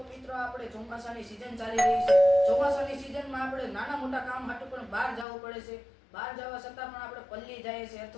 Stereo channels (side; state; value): right; drops out; at 5.2 s